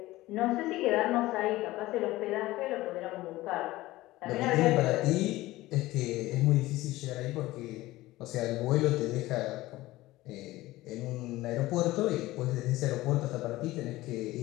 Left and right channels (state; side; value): quieter; right; 17.9 dB